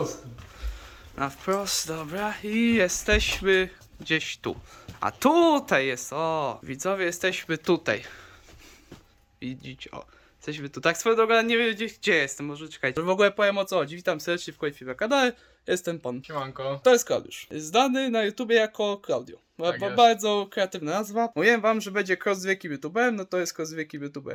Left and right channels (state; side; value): identical; both; correlation 1.00